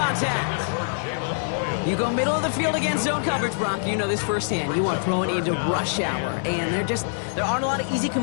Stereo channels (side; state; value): right; silent; digital silence